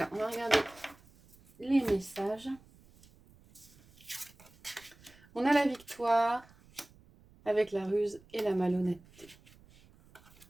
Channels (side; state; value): right; noise; rumble, 26 dB below the sound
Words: on va regarder les messages. On a la victoire avec la ruse et la malhonnêteté.